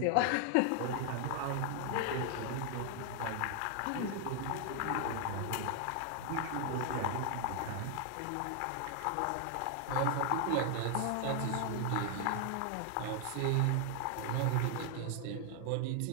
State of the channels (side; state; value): both; different; correlation 0.00